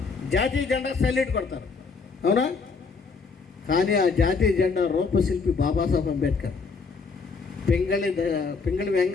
జాతీయ జెండా సల్యూట్ కొడతారు, అవునా? కానీ ఆ జాతీయ జెండా రూపశిల్పి బాబాసాహెబ్ అంబేద్కర్. పింగళి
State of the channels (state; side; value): quieter; right; 4.8 dB